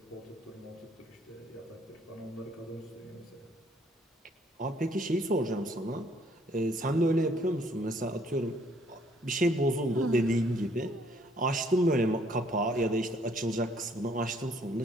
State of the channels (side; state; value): both; normal; correlation 0.64